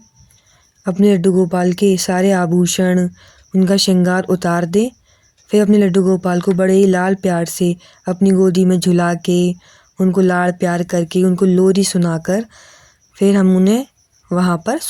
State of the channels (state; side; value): identical; both; correlation 1.00